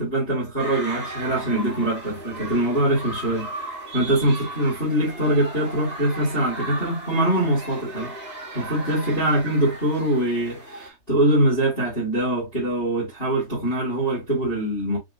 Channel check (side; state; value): right; late; 3.3 ms